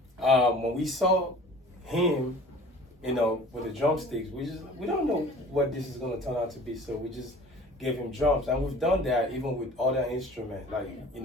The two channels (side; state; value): both; normal; correlation 0.46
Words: when we saw him, with the drumsticks, we don't know what this is going to turn out to be, so we just gave him drums, and we've done that even with other instruments, like he